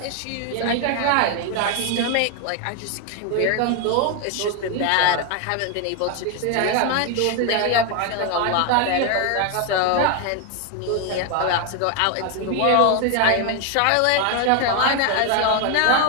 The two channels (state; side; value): different; both; correlation 0.01